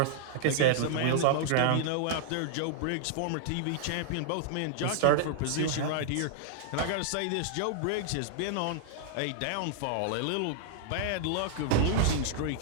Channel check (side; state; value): both; different; correlation -0.01